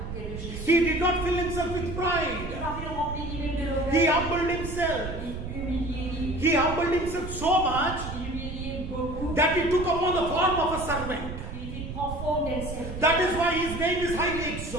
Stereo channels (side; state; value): right; noise; rumble, 7 dB below the sound